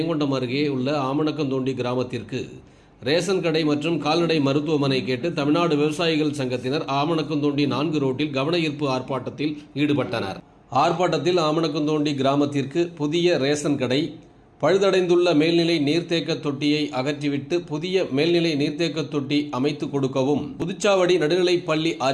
அருகே உள்ள ஆமணக்கந்தோண்டி கிராமத்திற்கு ரேஷன் கடை மற்றும் கால்நடை மருத்துவமனை கேட்டு தமிழ்நாடு விவசாயிகள் சங்கத்தினர் ஆமணக்கந்தோண்டி 4 ரோட்டில் கவன ஈர்ப்பு ஆர்ப்பாட்டத்தில் ஈடுபட்டனர். ஆர்ப்பாட்டத்தில் ஆமணக்கந்தோண்டி கிராமத்திற்கு புதிய ரேஷன் கடை, பழுதடைந்துள்ள மேல்நிலை நீர்த்தேக்க தொட்டியை அகற்றிவிட்டு புதிய மேல்நிலை நீர்த்தேக்க தொட்டி அமைத்து கொடுக்கவும், புதுச்சாவடி நடுநிலைப் பள்ளி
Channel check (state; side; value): identical; both; correlation 1.00